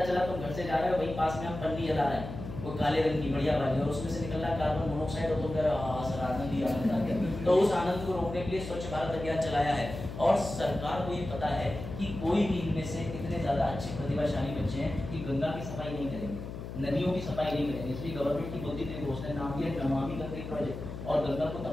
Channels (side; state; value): left; noise; hum, 9 dB below the sound